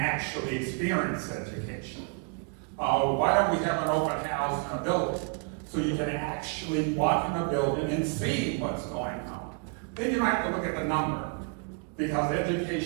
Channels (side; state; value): left; quieter; 36.4 dB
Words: experience education. Why don't we have an open house in a building? So you can actually walk in a building and see what's going on. Then you have to look at the number, because